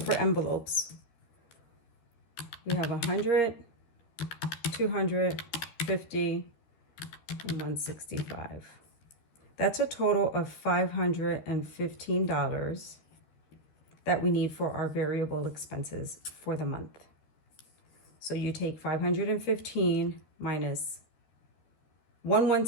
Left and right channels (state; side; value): late; right; 13 ms